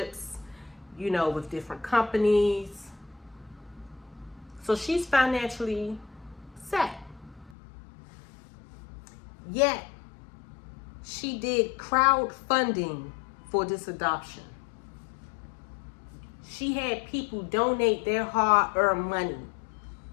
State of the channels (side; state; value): right; drops out; at 7.6 s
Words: with different companies. So she's financially set. Yet, she did crowdfunding for this adoption. She had people donate their hard-earned money